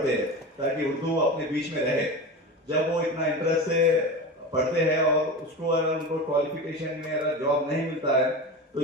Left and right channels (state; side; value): normal; both; correlation 0.27